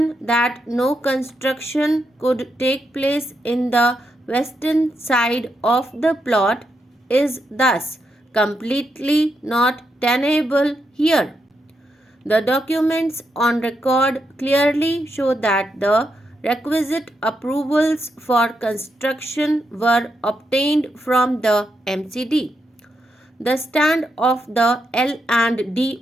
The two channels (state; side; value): normal; both; correlation 0.82